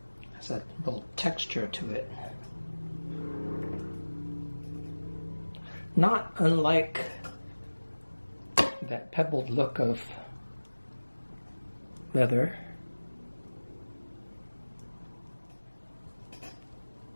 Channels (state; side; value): inverted; both; correlation -1.00